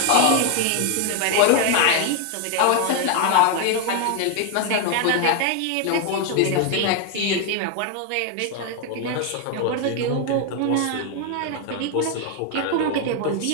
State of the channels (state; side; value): different; both; correlation 0.01